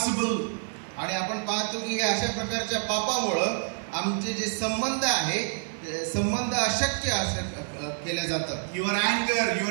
आणि आपण पाहतो की अशा प्रकारच्या पापामुळं आमचे जे संबंध आहे संबंध अशक्य केले जातात. Your anger,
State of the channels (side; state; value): left; silent; 60 dB below the other